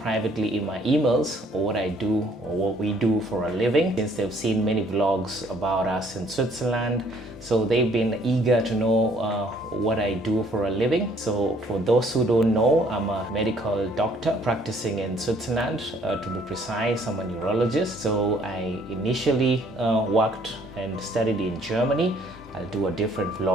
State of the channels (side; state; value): both; normal; correlation 0.62